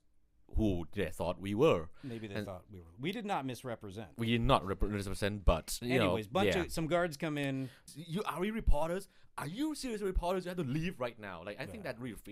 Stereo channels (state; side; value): identical; both; correlation 1.00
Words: who they thought we were. Maybe they thought we were. We did not misrepresent. We did not represent, but anyways, some guards come in. Are we reporters? Are you serious reporters? You have to leave right now. Like, I think that really